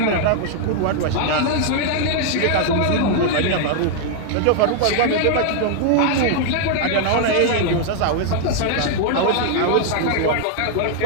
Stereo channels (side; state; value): both; different; correlation 0.00